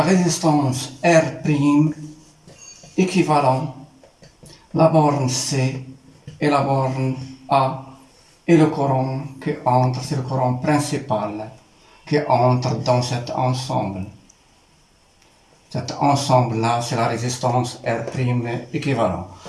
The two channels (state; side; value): identical; both; correlation 1.00